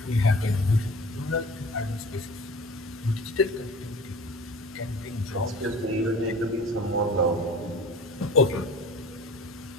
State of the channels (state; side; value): normal; both; correlation 0.40